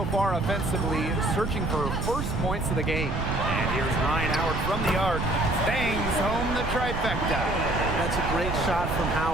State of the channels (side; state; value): right; noise; rumble, 3 dB below the sound